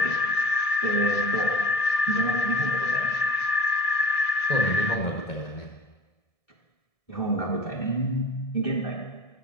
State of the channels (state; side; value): late; right; 1.7 ms